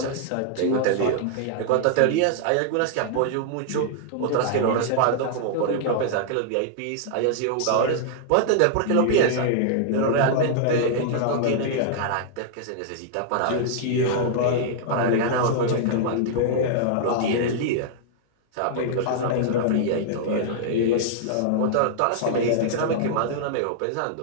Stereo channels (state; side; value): different; both; correlation -0.01